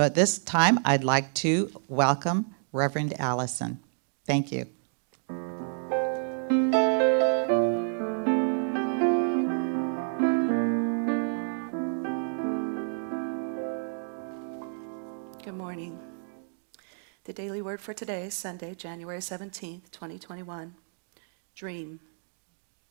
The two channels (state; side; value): silent; left; digital silence